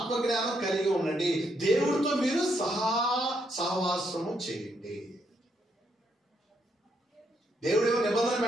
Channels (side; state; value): both; normal; correlation 0.76